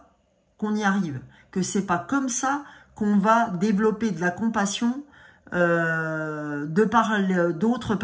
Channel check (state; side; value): identical; both; correlation 1.00